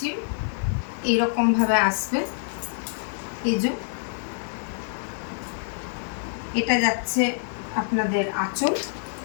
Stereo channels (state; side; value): silent; right; digital silence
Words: এইরকম ভাবে আসবে। এই যে এটা যাচ্ছে আপনাদের আঁচল,